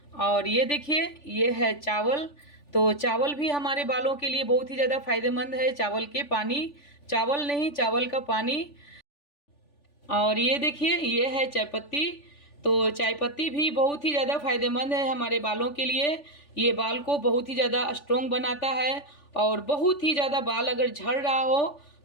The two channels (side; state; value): right; late; 3.4 ms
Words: और ये देखिए ये है चावल। तो चावल भी हमारे बालों के लिए बहुत ही ज़्यादा फायदेमंद है। चावल के पानी, चावल नहीं, चावल का पानी। और ये देखिए ये है चायपत्ती। तो चायपत्ती भी बहुत ही ज़्यादा फायदेमंद है हमारे बालों के लिए। ये बाल को बहुत ही ज़्यादा स्ट्रॉन्ग बनाता है और बहुत ही ज़्यादा बाल अगर झड़ रहा हो